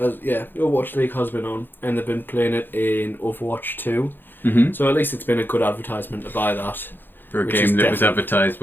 League has been on, and they've been playing it in Overwatch 2. Mm-hmm. So at least it's been a good advertisement to buy that. For a Which game is that was definitely- advertised,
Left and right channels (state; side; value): late; right; 0.096 ms